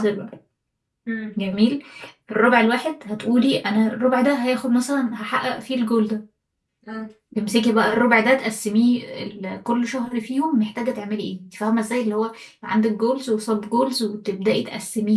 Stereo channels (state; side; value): identical; both; correlation 1.00